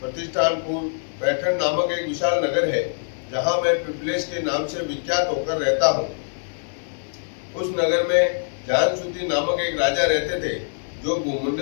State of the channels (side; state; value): right; silent; 63 dB below the other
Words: प्रतिष्ठानपुर पैठण नामक एक विशाल नगर है, जहाँ मैं पिपलेश के नाम से विख्यात होकर रहता हूँ। उस नगर में जानसूति नामक एक राजा रहते थे, जो